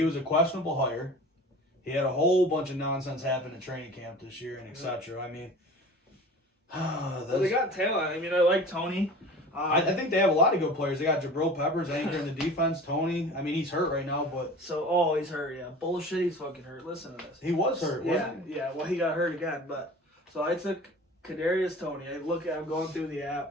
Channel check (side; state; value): both; normal; correlation 0.40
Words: was a questionable hire. He had a whole bunch of nonsense happen in training camp this year and etc. I mean, they got talent. I mean, I like Tony. I think they have a lot of good players. They got Jabril Peppers anchoring the defense. Tony, I mean, he's hurt right now, but he's hurt. Yeah, bullshit. He's fucking hurt. Listen to this. He was hurt. Wasn't he? Yeah. Well, he got hurt again. But so I took Kadarius Toney. I'm going through the app.